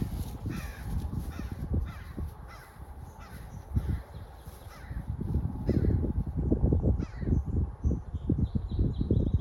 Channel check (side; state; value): both; identical; correlation 1.00